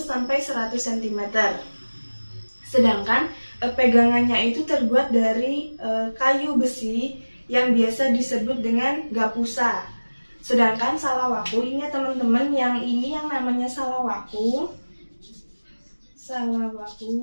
sampai 100 cm. Sedangkan pegangannya itu terbuat dari kayu besi yang biasa disebut dengan gapusa. Sedangkan salawaku ini teman-teman, yang ini yang namanya salawaku.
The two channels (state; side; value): inverted; both; correlation -1.00